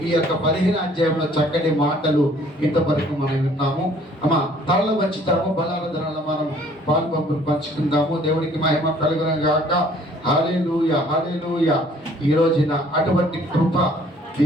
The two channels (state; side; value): normal; both; correlation 0.57